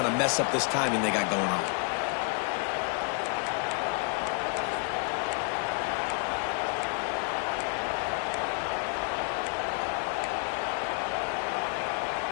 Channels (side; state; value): right; quieter; 37.9 dB